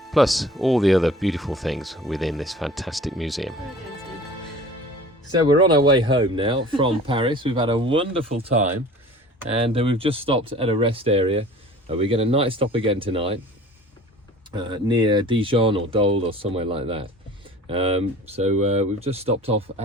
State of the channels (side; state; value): both; normal; correlation 0.44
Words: Plus all the other beautiful things within this fantastic museum. So we're on our way home now from Paris. We've had a wonderful time, and we've just stopped at a rest area. We get a night stop again tonight near Dijon or Dole or somewhere like that. So we've just stopped off